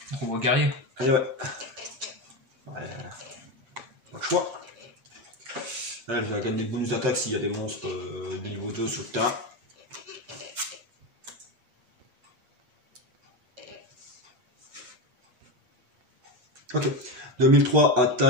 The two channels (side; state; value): left; late; 8.5 ms